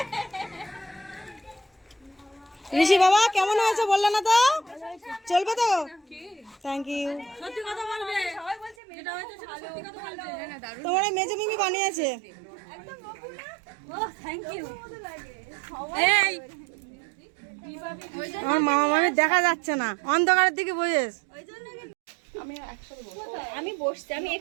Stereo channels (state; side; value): drops out; left; at 8.8 s